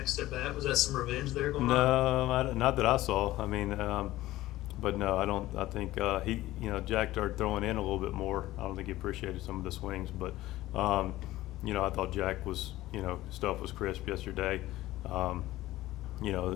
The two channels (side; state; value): right; quieter; 16.3 dB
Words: at bat? Was that some revenge there going on? No, not that I saw. I mean, but no, I don't. I think he, Jack started throwing in a little bit more. I don't think he appreciated some of the swings, but I thought Jack was, stuff was crisp yesterday.